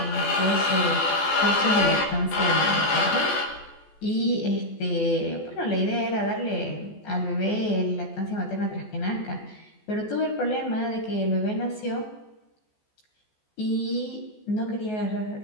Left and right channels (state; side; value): late; right; 14 ms